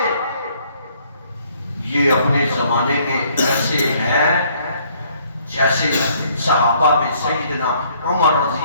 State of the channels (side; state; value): both; inverted; correlation -0.64